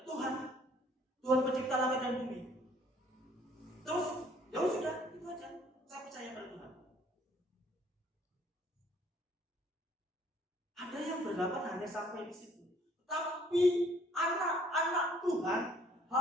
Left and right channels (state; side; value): normal; both; correlation 0.60